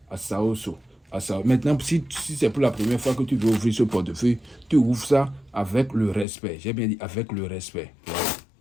Asaoso. Asaoso. Maintenant, si c'est pour la première fois que tu veux ouvrir ce portefeuille, tu ouvres ça avec le respect. J'ai bien dit avec le respect. Voilà.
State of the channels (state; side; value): drops out; right; at 6.2 s